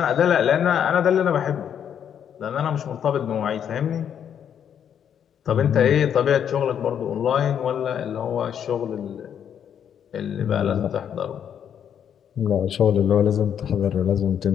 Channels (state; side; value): quieter; right; 8.7 dB